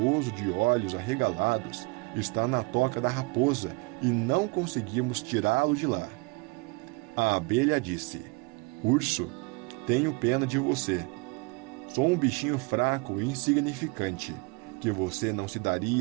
de olhos arregalados está na toca da raposa e não conseguimos tirá-lo de lá." A abelha disse: "Urso, tenho pena de você. Sou um bichinho fraco e insignificante, que você não se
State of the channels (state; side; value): quieter; left; 27.5 dB